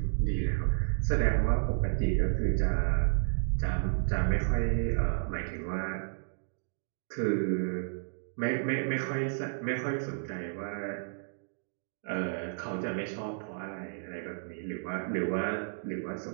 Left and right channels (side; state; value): left; silent; digital silence